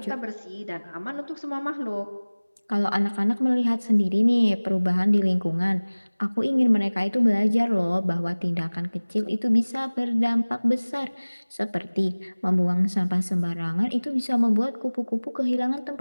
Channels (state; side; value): inverted; both; correlation -1.00